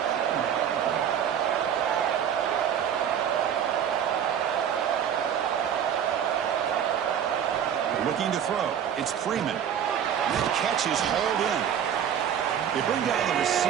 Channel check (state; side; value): quieter; left; 8.9 dB